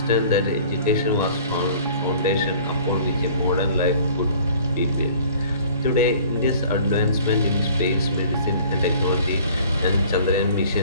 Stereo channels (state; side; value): inverted; both; correlation -0.50